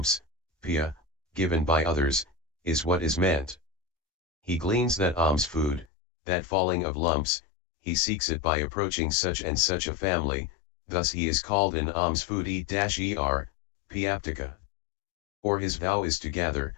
pia, given by others, is what is meant. He gleans that alms food, that falling of lumps, he seeks it by approaching such and such a family, thus he is called an alms foodie-er, piaptika. Or his vow is to gather,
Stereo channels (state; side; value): drops out; right; at 5.9 s